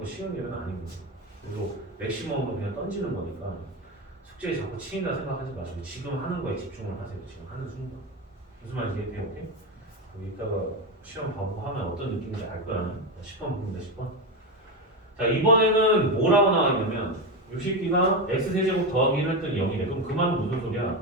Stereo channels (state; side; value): normal; both; correlation 0.15